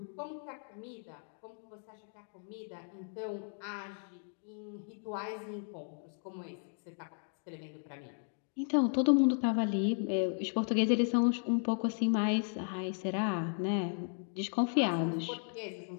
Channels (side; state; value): right; silent; 54 dB below the other